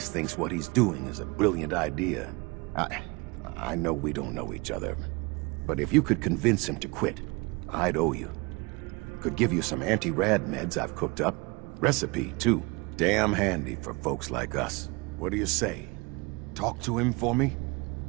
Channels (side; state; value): left; quieter; 26.9 dB